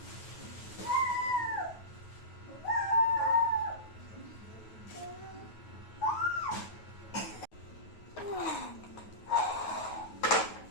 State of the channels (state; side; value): late; right; 9.3 ms